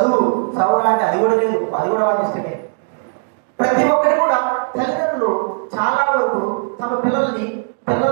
అంటే అది కూడా లేదు, అది కూడా వారి ఇష్టమే. ప్రతి ఒక్కరి కూడా తల్లిదండ్రులు చాలా వరకు తమ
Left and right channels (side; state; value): left; silent; 67 dB below the other